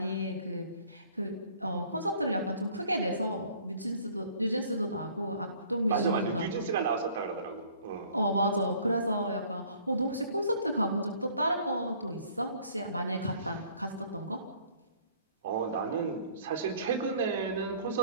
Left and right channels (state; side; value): inverted; both; correlation -0.56